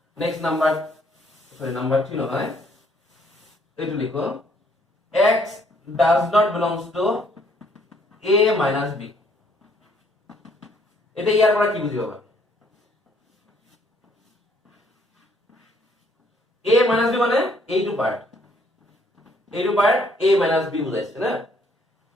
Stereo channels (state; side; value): normal; both; correlation 0.66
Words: নেক্সট নাম্বার নাম্বার 3 নহয় এইটো লিখো x does not belongs to a minus b এটা ইয়াৰ পৰা কি বুজিবা a minus b মানে এইটো পার্ট a minus b বুজাইছে না